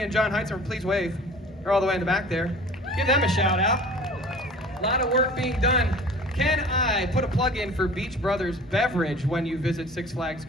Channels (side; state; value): both; normal; correlation 0.44